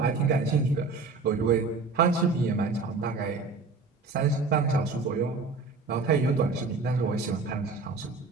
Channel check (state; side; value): quieter; left; 4.2 dB